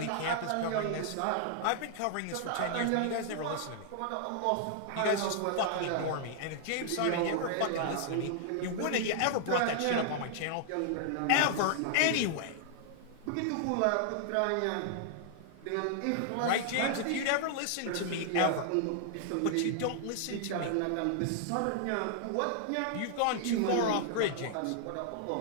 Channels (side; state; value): both; different; correlation -0.01